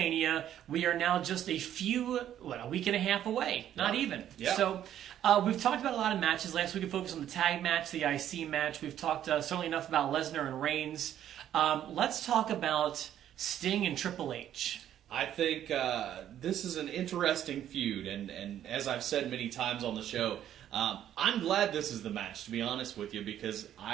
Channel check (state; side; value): quieter; left; 11.0 dB